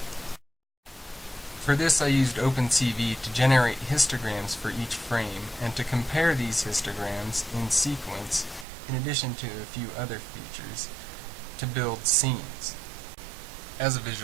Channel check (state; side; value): drops out; left; at 8.7 s